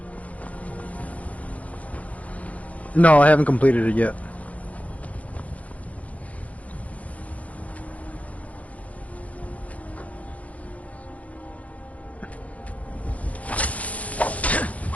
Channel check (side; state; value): right; late; 0.067 ms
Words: No, I haven't completed it yet.